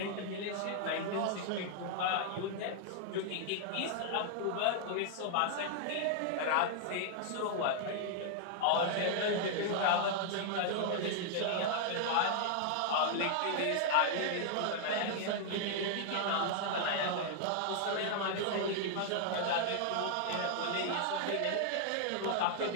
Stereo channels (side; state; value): both; different; correlation 0.00